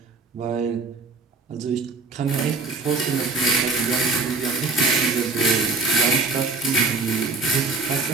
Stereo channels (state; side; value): quieter; left; 3.9 dB